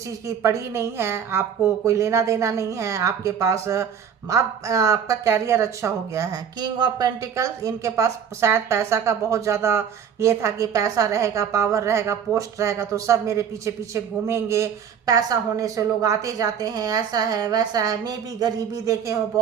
की पड़ी नहीं है, आपको कोई लेना देना नहीं है, आपके पास अब आपका कैरियर अच्छा हो गया है। किंग ऑफ पेंटिकल्स, इनके पास शायद पैसा का बहुत ज़्यादा ये था कि पैसा रहेगा, पावर रहेगा, पोस्ट रहेगा तो सब मेरे पीछे पीछे घूमेंगे, पैसा होने से लोग आते जाते हैं, ऐसा है वैसा है। मैं भी गरीबी देखे हो,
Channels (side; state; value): left; quieter; 7.8 dB